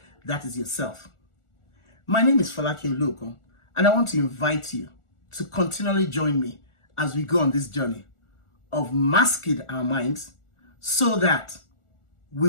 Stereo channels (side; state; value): right; late; 1.4 ms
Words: that is yourself. My name is Folake Oluokun, and I want to invite you to continually join me as we go on this journey of masking our minds so that we